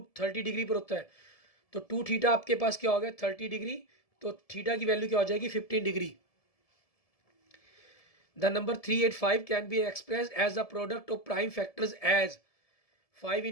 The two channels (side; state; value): right; late; 1.7 ms